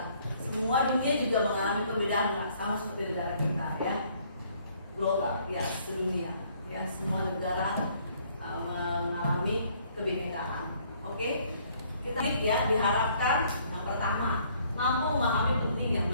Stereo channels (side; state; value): both; inverted; correlation -0.63